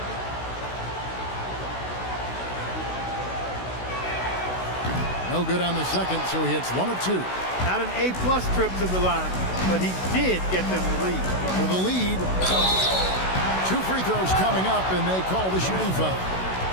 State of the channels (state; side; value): late; right; 16 ms